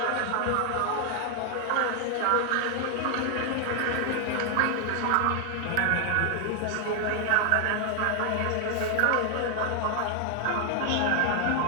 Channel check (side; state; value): both; different; correlation 0.00